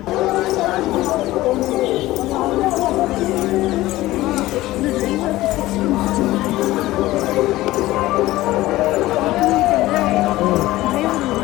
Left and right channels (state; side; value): quieter; right; 17.1 dB